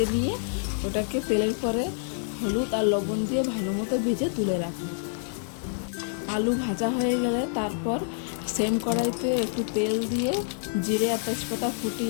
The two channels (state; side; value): silent; right; 60 dB below the other